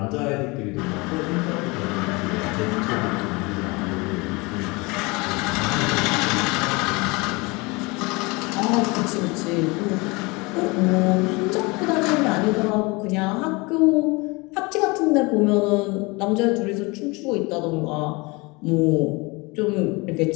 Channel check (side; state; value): right; quieter; 25.8 dB